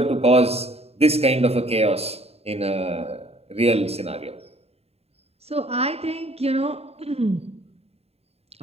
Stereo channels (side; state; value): left; late; 0.30 ms